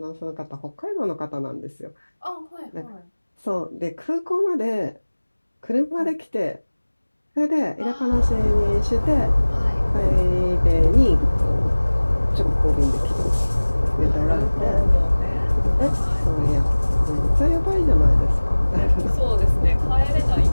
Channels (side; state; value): both; inverted; correlation -1.00